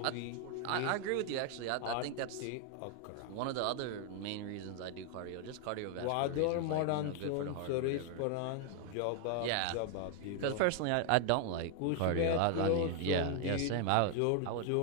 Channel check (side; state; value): both; different; correlation 0.00